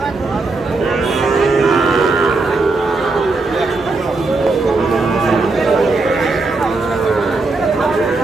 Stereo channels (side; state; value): left; quieter; 3.6 dB